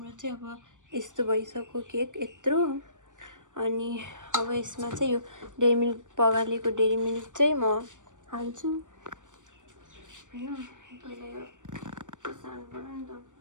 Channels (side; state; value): left; late; 0.86 ms